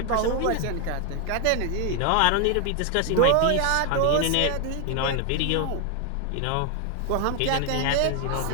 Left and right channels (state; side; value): different; both; correlation 0.00